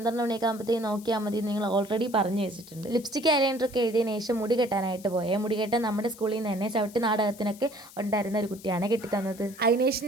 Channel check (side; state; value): left; noise; hiss, 20 dB below the sound